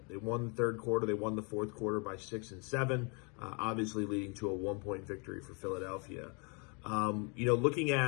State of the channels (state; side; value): quieter; right; 33.8 dB